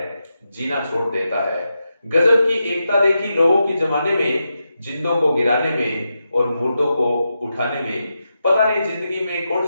जीना छोड़ देता है। गजब की एकता देखी लोगों की जमाने में, जिंदों को गिराने में और मुर्दों को उठाने में। पता नहीं जिंदगी में कौन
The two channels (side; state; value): both; inverted; correlation -0.88